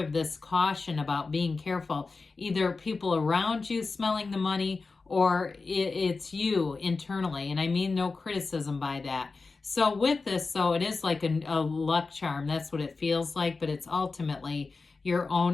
this caution about being careful. Either people around you smelling the money, or it's you internally. And I mean no criticism by that. So with this, so it is like a luck charm. That's what it feels like, but it's ultimately your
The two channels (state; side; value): quieter; right; 4.1 dB